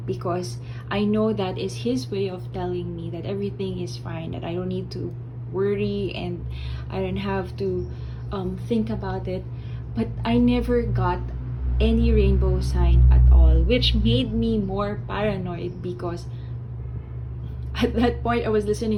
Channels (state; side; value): identical; both; correlation 1.00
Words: because I know that is His way of telling me that everything is fine, that I don't need to worry and I don't have to think about it. But I never got any rainbow sign at all, which made me more paranoid, because at that point I was